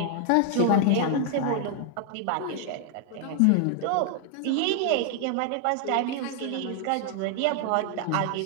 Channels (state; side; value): different; both; correlation 0.00